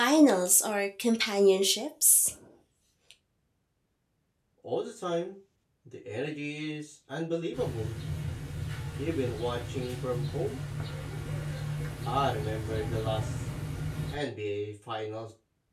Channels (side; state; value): both; identical; correlation 1.00